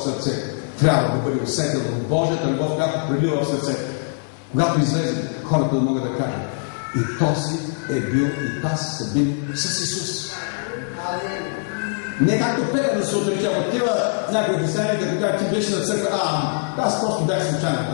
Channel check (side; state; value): right; silent; 64 dB below the other